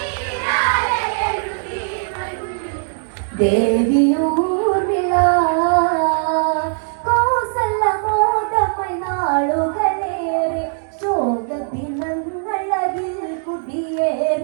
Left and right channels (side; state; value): left; silent; digital silence